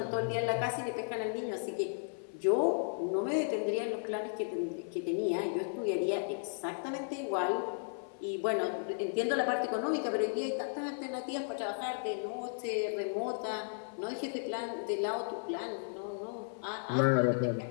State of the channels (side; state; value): right; silent; 55 dB below the other